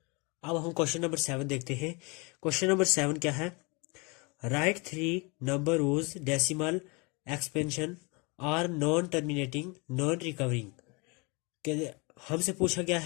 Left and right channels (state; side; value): quieter; right; 28.8 dB